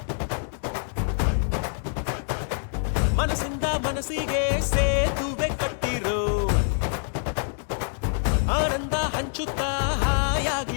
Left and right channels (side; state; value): right; silent; digital silence